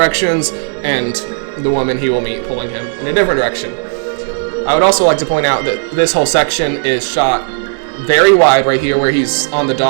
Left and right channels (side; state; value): left; silent; digital silence